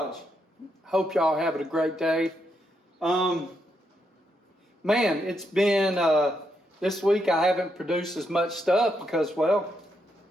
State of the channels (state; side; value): normal; both; correlation 0.80